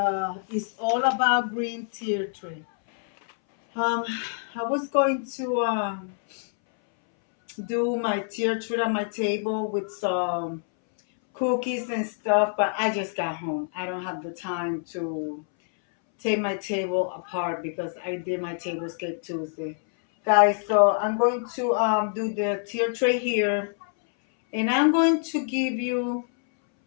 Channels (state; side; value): silent; right; 61 dB below the other